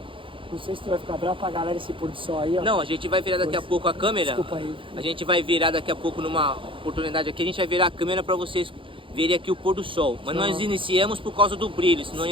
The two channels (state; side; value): late; left; 0.25 ms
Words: Não sei se tu vai ficar bravo pra galera esse pôr do sol aí, ó. Não, a gente vai virar daqui a pouco a câmera. Desculpa aí. A gente vai virar daqui a pouco numa oportunidade aqui, a gente vai virar a câmera para vocês verem aqui o pôr do sol. Mas nós iniciamos por causa do brilho, senão